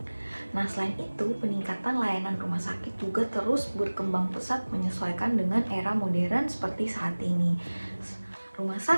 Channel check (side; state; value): both; inverted; correlation -1.00